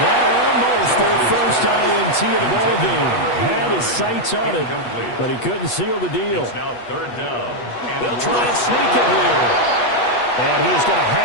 that almost their first INT of the ball game. Had his sights on it, but he couldn't seal the deal. It's now 3rd down. They'll try and sneak it here. And he is going to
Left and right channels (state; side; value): late; right; 8.3 ms